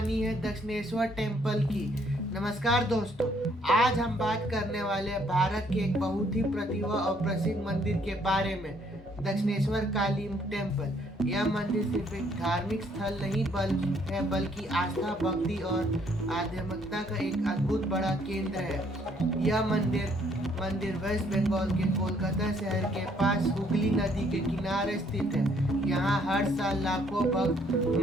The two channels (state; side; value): normal; both; correlation 0.66